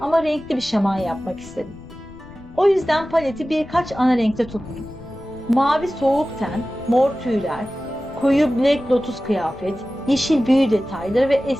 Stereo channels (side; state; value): left; noise; rumble, 20 dB below the sound